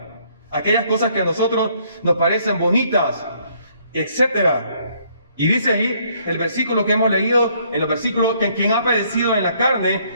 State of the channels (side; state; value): both; inverted; correlation -0.66